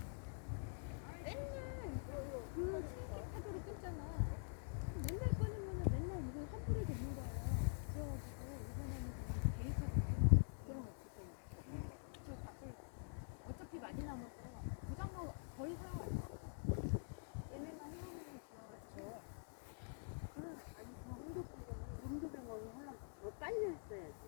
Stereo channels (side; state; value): right; silent; digital silence